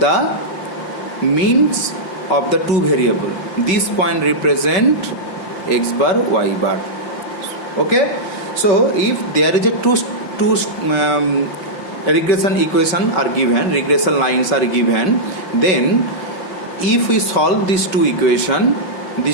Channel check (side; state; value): right; late; 5.3 ms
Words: means of the two variable. This point represent x bar y bar. Okay, so if there is a two regression equation are given, regression lines are given, then if we solve these two equation,